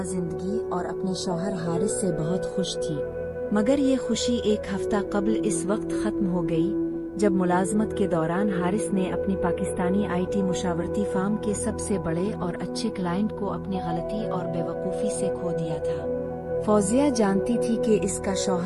जिंदगी और अपने शौहर हारिस से बहुत खुश थी। मगर ये खुशी एक हफ्ता कबल इस वक्त खत्म हो गई जब मुलाजमत के दौरान हारिस ने अपनी पाकिस्तानी IT मुशावरती फार्म के सबसे बड़े और अच्छे क्लाइंट को अपनी गलती और बेवकूफ़ी से खो दिया था। फौजिया जानती थी कि इसका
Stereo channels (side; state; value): both; identical; correlation 1.00